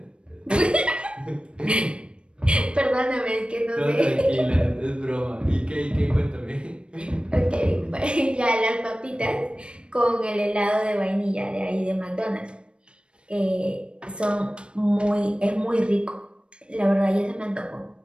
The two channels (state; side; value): late; left; 0.056 ms